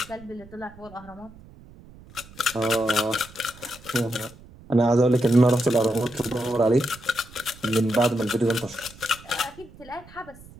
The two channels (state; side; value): noise; right; rumble, 21 dB below the sound